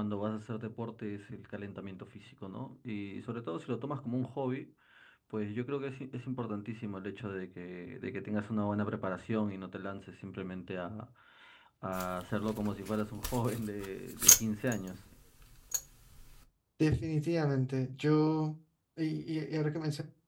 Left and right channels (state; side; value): identical; both; correlation 1.00